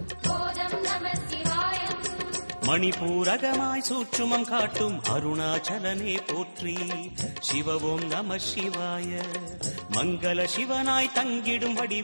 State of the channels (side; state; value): both; inverted; correlation -1.00